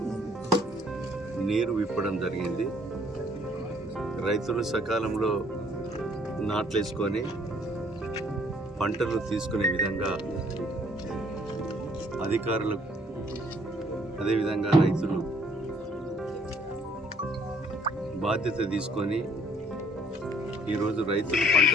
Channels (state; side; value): normal; both; correlation 0.62